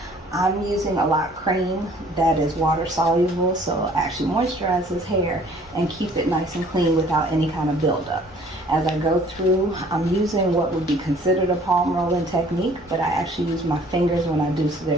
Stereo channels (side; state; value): both; normal; correlation 0.55